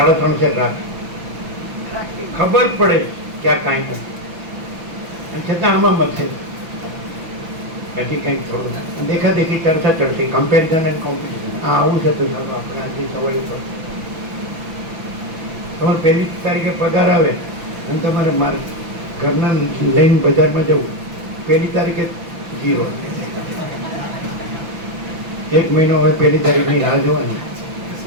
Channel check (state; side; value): late; left; 5.9 ms